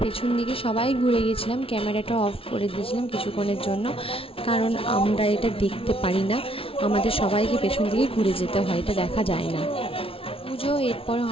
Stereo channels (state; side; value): late; right; 0.26 ms